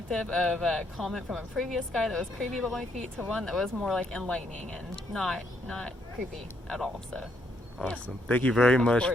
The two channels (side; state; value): both; normal; correlation 0.73